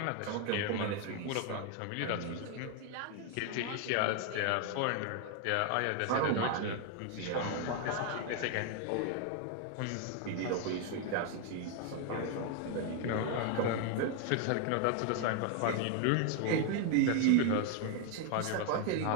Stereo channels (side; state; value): both; different; correlation 0.01